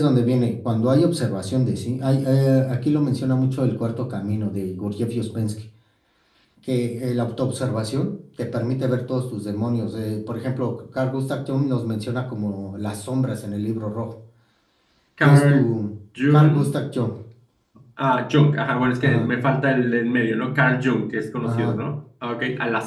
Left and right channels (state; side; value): identical; both; correlation 1.00